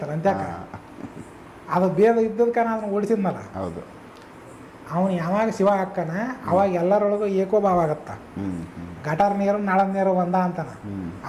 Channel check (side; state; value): both; identical; correlation 1.00